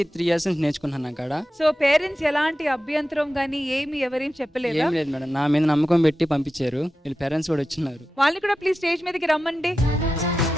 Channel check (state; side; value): normal; both; correlation 0.92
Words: 3 years నుంచి నేర్చుకున్నాను అక్కడ. సో పేరెంట్స్ ఎలాంటి అభ్యంతరం గానీ ఏం చెప్పలేదు? ఏం లేదు మేడం, నా మీద నమ్మకం పెట్టి పంపించారు. వీళ్ళ పేరెంట్స్ కూడా వచ్చినారు. వాళ్ళని కూడా ప్లీజ్ స్టేజ్ మీదకి రమ్మండి.